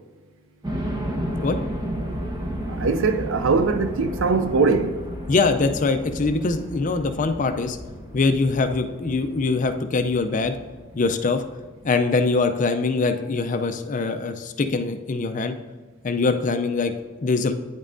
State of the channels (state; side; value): normal; both; correlation 0.34